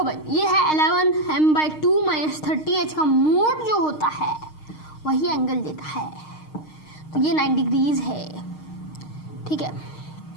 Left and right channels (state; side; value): late; right; 6.5 ms